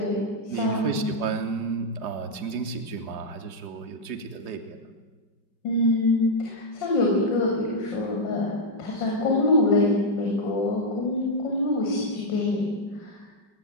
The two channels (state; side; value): late; right; 4.8 ms